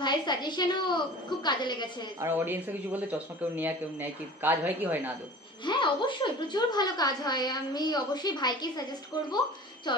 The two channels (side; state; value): both; normal; correlation 0.41